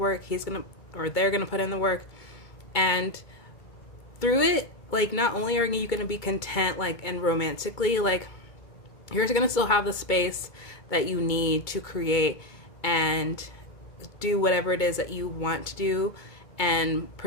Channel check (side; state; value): right; late; 2.2 ms